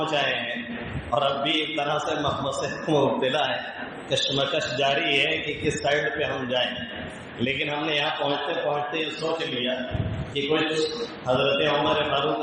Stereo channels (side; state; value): both; identical; correlation 1.00